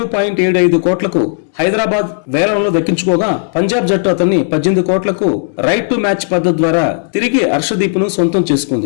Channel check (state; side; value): silent; right; digital silence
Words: కోట్లకు హైదరాబాద్ వేలంలో దక్కించుకోగా పంజాబ్ జట్టు అతన్ని 18 కోట్లకు రైట్ టు మ్యాచ్ పద్ధతి ద్వారా తిరిగి హర్షదీప్ ను సొంతం